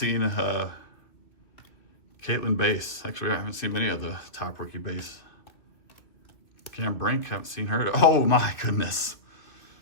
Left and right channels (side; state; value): right; late; 2.6 ms